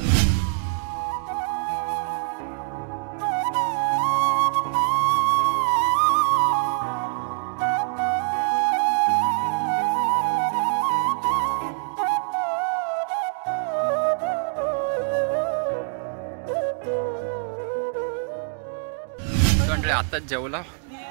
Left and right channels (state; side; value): silent; left; 62 dB below the other